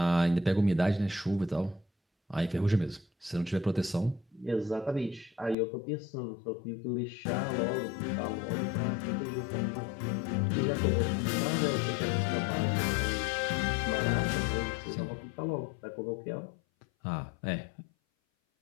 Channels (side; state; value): right; drops out; at 5.6 s